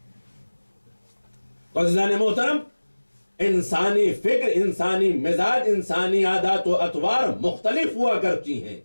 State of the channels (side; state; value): both; inverted; correlation -1.00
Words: تو عزیزان محترم، انسانی فکر، انسانی مزاج، انسانی عادات و اطوار مختلف ہوا کرتی ہیں،